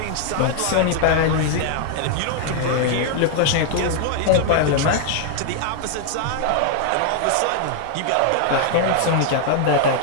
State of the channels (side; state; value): both; different; correlation 0.00